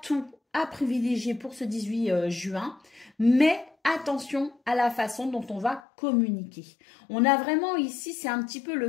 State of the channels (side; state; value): right; drops out; at 5.8 s